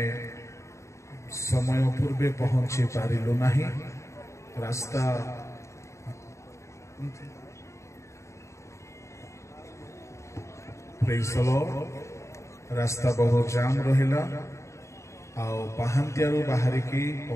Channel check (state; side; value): late; right; 0.14 ms